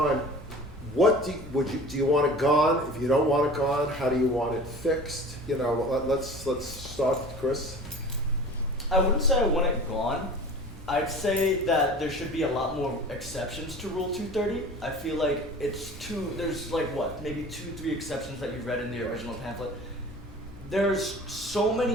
what do you want it gone? If you don't want it gone, how do you want it fixed? Let's start, Chris. I wouldn't say I want it gone. I'd say that there should be a lot more exceptions to Rule 230. I feel like there's maybe 2-3 exceptions that you read in the original pamphlet. There's so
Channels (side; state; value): both; normal; correlation 0.41